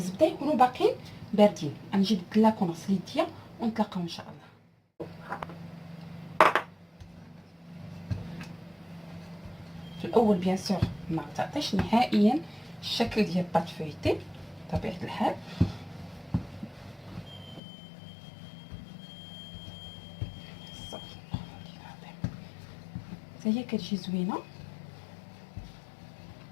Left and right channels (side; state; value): right; drops out; at 17.6 s